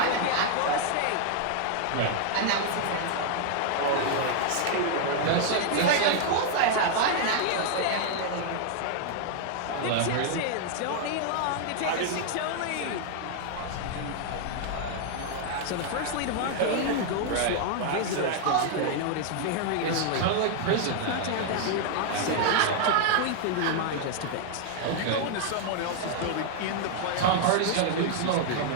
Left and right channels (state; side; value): different; both; correlation 0.00